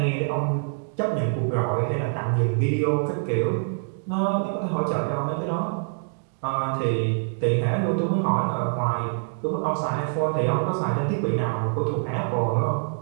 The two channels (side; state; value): left; silent; digital silence